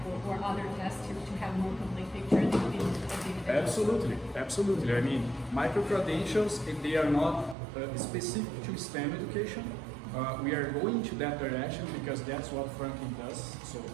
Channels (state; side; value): drops out; left; at 7.6 s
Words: or other tests to have more complete picture of the individual. Absolutely. I mean, micro-credentials, they are not specific to STEM education. We are going to that direction because that's what Franklin does, so